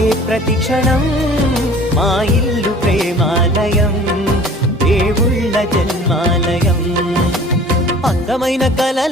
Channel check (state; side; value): normal; both; correlation 0.47